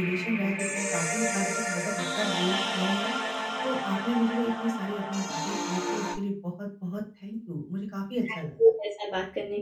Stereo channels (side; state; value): both; identical; correlation 1.00